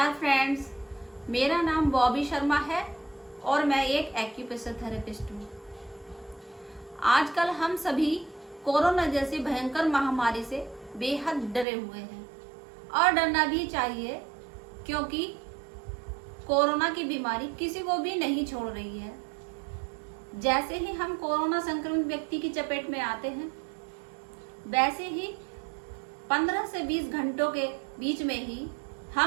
फ्रेंड्स, मेरा नाम बॉबी शर्मा है और मैं एक एक्यूप्रेशर थेरेपिस्ट हूँ। आजकल हम सभी कोरोना जैसी भयंकर महामारी से बेहद डरे हुए हैं और डरना भी चाहिए, क्योंकि कोरोना की बीमारी किसी को भी नहीं छोड़ रही है। जैसे ही हम कोरोना संक्रमित व्यक्ति की चपेट में आते हैं, वैसे ही 15 से 20 घंटों के बीच में ही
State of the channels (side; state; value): left; drops out; at 11.7 s